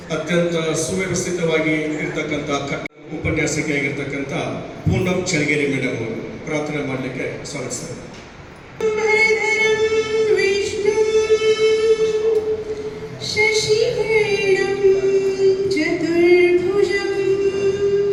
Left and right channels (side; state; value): both; identical; correlation 1.00